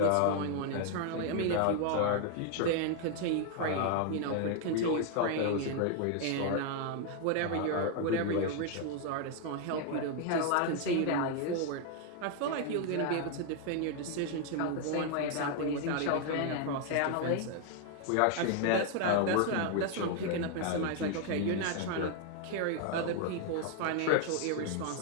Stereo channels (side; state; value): both; different; correlation 0.00